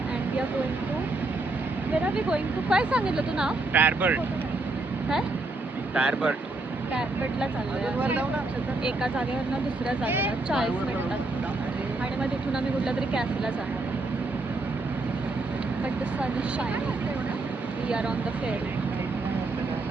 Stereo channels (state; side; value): quieter; left; 3.2 dB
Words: we are going to. Where are we going to? काय सांगितलं तू नाव? टायरबर्ट. काय? टायरबर्ट. टायरबर्टला चाललोय. एका जागेवरनं दुसऱ्या जागेला 40 मिनिटात आणि मग तिथून आम्ही कुठल्या तरी कॅफेला जाणार. But the sun is shining. we are on the ferry.